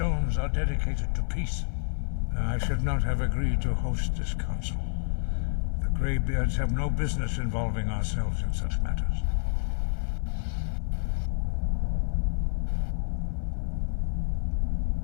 are dedicated to peace. I should not have agreed to host this council. The Greybeards have no business involving ourselves in such matters.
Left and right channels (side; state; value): right; silent; 57 dB below the other